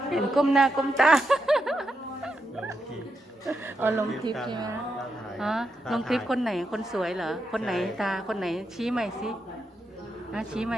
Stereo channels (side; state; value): both; normal; correlation 0.84